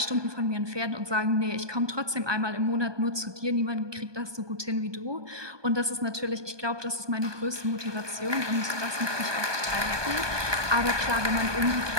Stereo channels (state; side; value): late; left; 1.2 ms